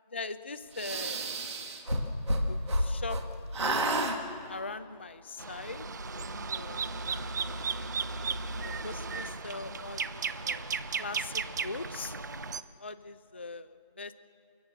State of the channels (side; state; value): both; inverted; correlation -0.41